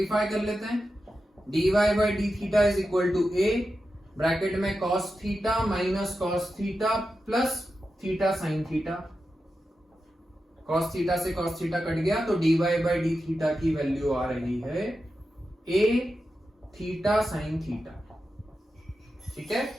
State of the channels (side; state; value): both; normal; correlation 0.90